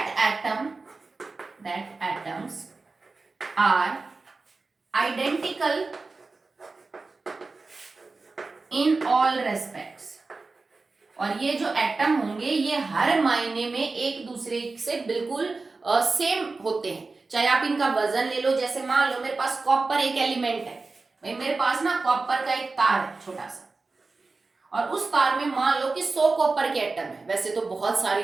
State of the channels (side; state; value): left; quieter; 3.8 dB